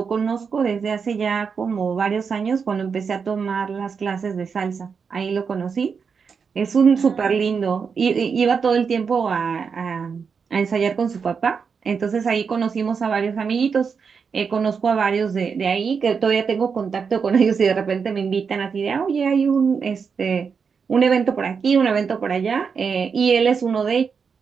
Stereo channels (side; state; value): left; quieter; 5.9 dB